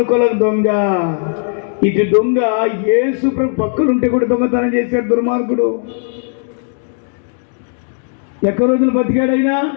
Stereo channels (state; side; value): silent; right; 61 dB below the other